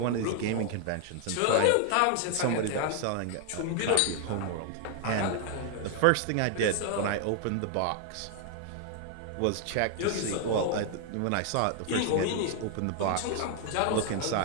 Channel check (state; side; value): different; both; correlation 0.00